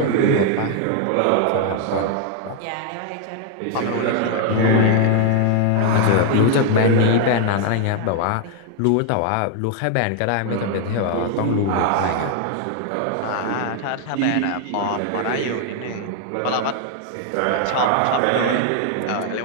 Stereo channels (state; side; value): different; both; correlation 0.00